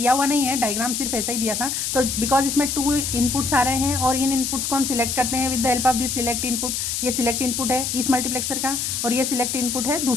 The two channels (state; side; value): noise; left; hiss, 2 dB below the sound